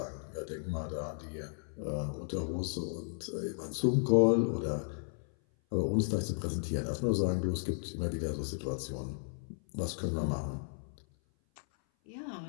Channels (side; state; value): right; silent; 55 dB below the other